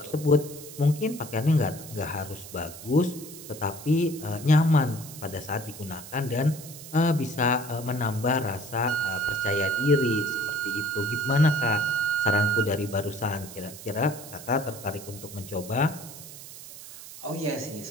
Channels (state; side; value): noise; right; hiss, 14 dB below the sound